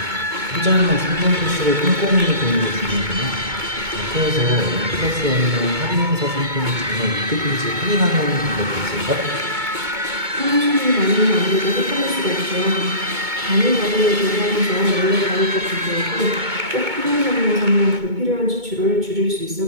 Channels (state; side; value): late; left; 2.2 ms